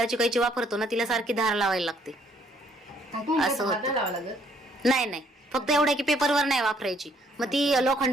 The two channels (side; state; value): both; normal; correlation 0.66